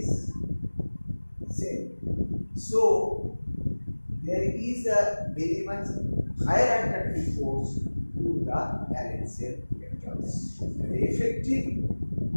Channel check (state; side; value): inverted; both; correlation -1.00